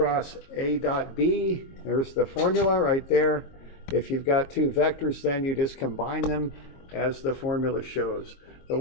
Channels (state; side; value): late; right; 22 ms